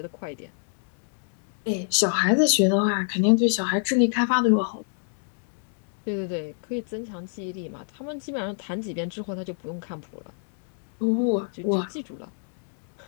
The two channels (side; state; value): right; silent; 61 dB below the other